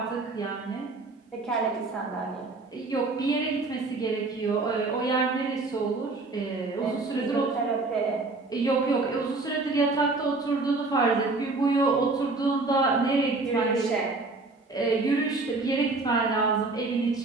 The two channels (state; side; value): quieter; left; 3.5 dB